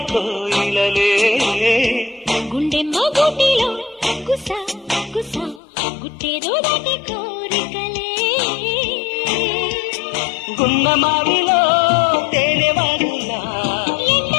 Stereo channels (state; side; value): drops out; right; at 5.6 s